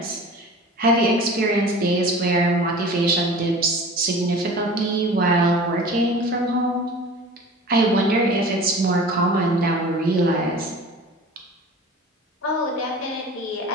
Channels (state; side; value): normal; both; correlation 0.40